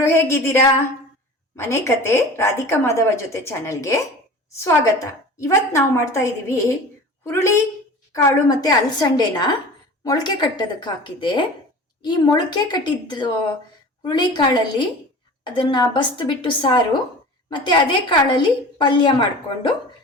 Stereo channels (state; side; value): normal; both; correlation 0.38